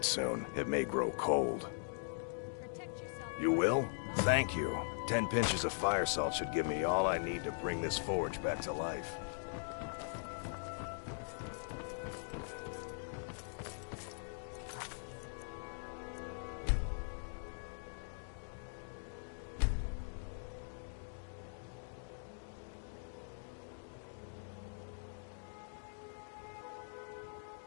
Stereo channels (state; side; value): silent; right; digital silence